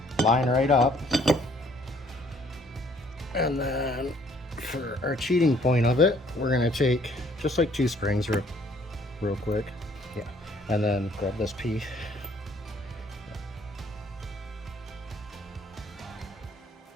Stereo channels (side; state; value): both; normal; correlation 0.62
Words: line right up. And then for our cheating point of it, we're going to take just like 2 springs real quick. Yeah. And then grab this piece.